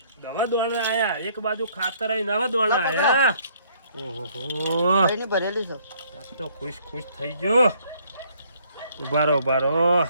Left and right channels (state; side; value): inverted; both; correlation -0.63